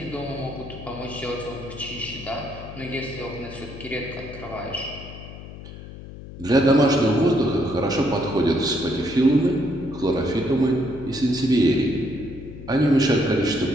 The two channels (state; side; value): noise; left; hum, 14 dB below the sound